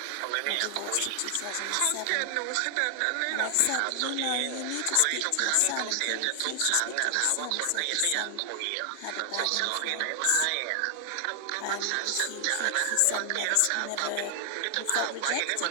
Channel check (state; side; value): different; both; correlation 0.00